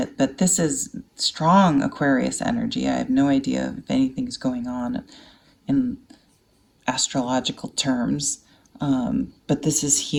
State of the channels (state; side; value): identical; both; correlation 1.00